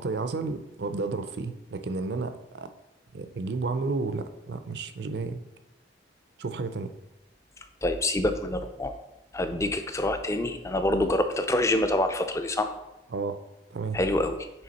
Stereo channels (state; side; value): normal; both; correlation 0.51